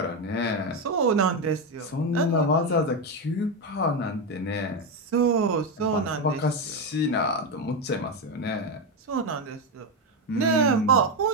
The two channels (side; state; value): both; normal; correlation 0.10